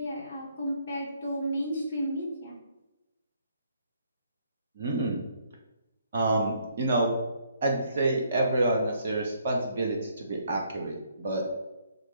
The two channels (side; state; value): both; inverted; correlation -0.68